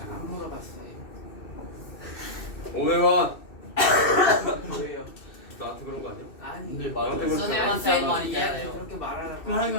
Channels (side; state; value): right; late; 2.7 ms